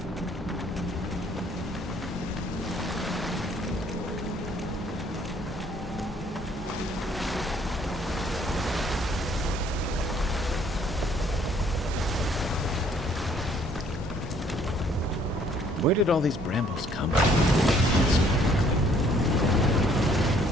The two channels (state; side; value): normal; both; correlation 0.62